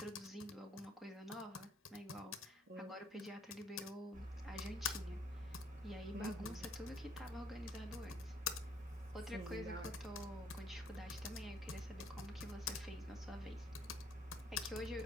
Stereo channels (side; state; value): both; normal; correlation 0.63